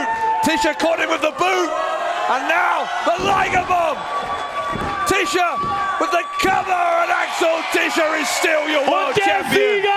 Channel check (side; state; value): both; identical; correlation 1.00